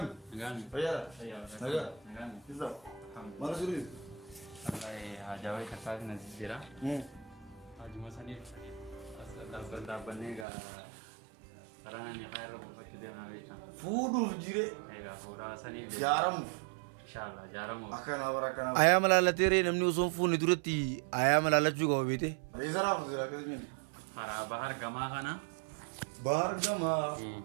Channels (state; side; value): drops out; left; at 10.5 s